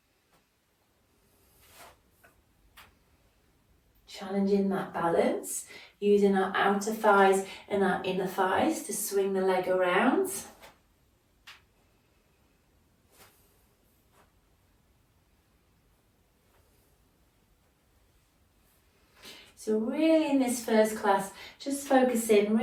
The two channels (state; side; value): identical; both; correlation 1.00